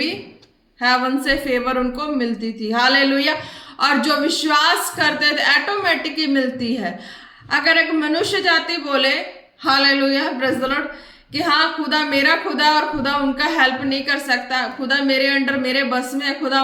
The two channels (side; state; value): both; identical; correlation 1.00